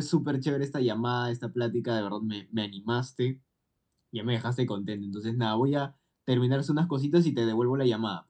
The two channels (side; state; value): both; identical; correlation 1.00